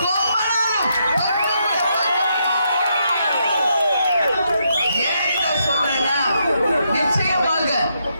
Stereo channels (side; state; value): both; inverted; correlation -0.78